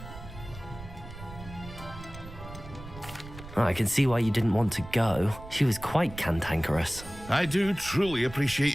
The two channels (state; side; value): noise; right; rumble, 14 dB below the sound